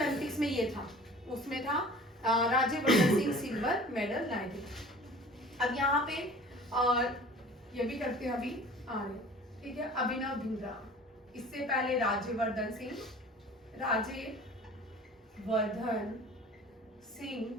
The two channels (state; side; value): normal; both; correlation 0.44